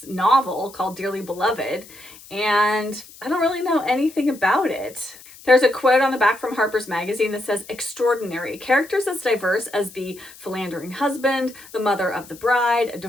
novel called Dearly Beloved, and I don't really know anything about it. There's a quote on the back from Harper's Magazine that says, "Extraordinary. Characters as diverse as the philandering husband, the mother of the bride, a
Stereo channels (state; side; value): noise; left; hiss, 20 dB below the sound